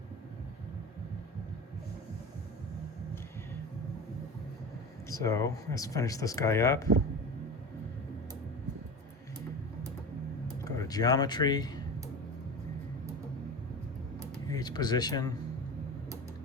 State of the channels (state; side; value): normal; both; correlation 0.29